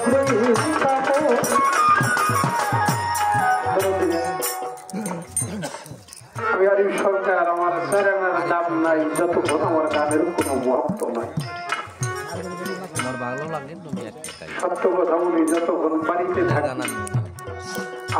আমি আর সরকার আমার চ্যানেলের নাম নাই যতক্ষণ আমার গানের কোনো ভক্ত নাই সত্য কথা বলি যতক্ষণ বাড়িতে থাকি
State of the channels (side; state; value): both; identical; correlation 1.00